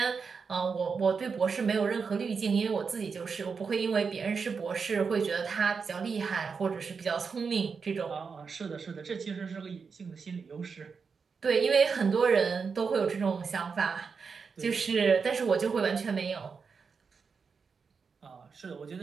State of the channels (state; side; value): quieter; left; 5.5 dB